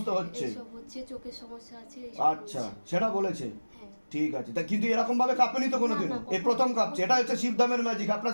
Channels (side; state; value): both; inverted; correlation -1.00